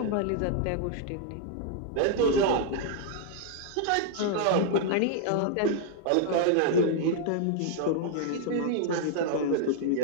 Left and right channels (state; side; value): different; both; correlation -0.01